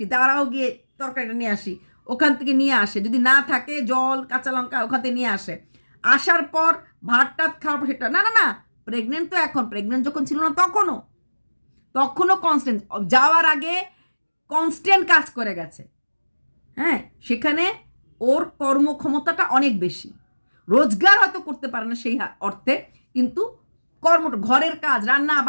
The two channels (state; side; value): inverted; both; correlation -1.00